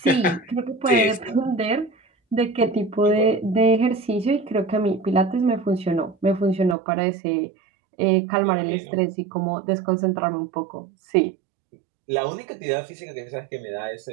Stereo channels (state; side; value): drops out; left; at 6.8 s